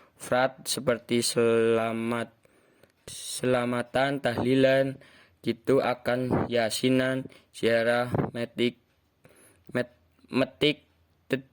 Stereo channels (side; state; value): both; identical; correlation 1.00